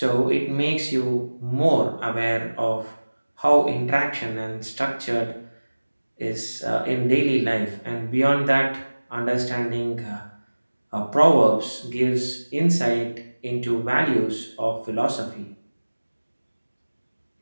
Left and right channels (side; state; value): both; inverted; correlation -1.00